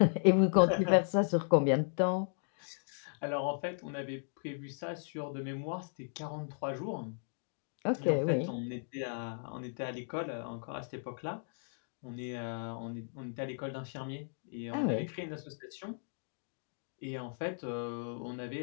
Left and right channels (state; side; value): silent; right; digital silence